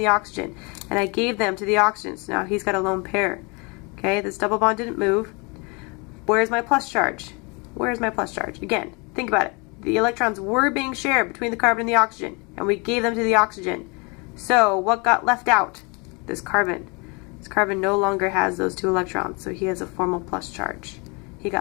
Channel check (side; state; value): right; quieter; 30.1 dB